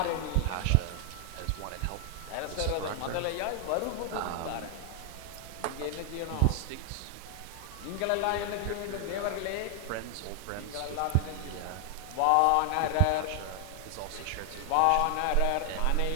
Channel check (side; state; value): both; different; correlation 0.00